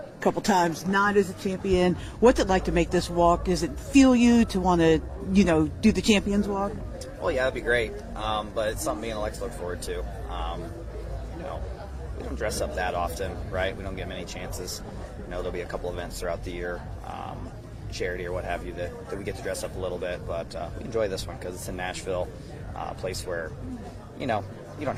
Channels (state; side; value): identical; both; correlation 1.00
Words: couple times not as a champion. What's it like to make this walk? Does it feel you to want to, do the champion's walk? Well, yeah, that'd be great, but it's something me and Alex look forward to. We don't dress up that often, right? We don't get many chances. There'll be a couple events throughout the year, charity or what have you, that we get to dress up a little bit, but we enjoy this one because it's in Nashville, a place where, you don't